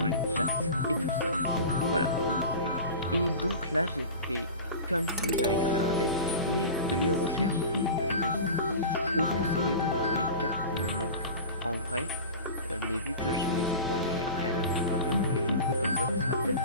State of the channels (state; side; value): inverted; both; correlation -0.33